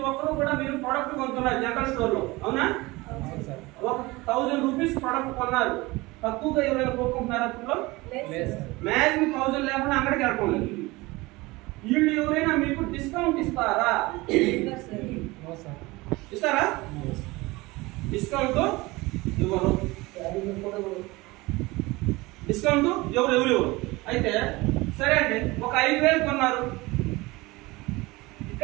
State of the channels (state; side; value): quieter; left; 21.9 dB